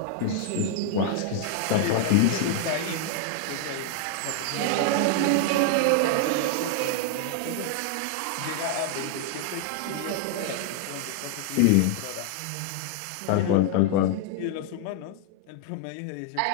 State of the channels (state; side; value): different; both; correlation 0.00